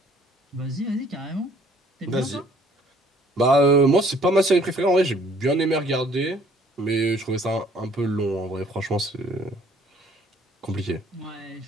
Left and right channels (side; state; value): both; normal; correlation 0.58